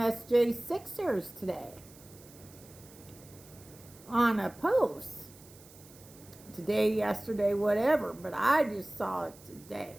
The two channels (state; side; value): noise; right; hiss, 22 dB below the sound